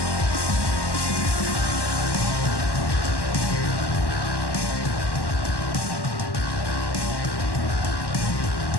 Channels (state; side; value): late; right; 1.1 ms